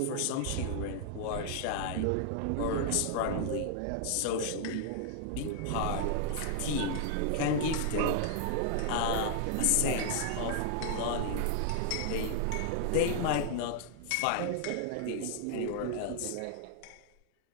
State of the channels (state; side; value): different; both; correlation -0.01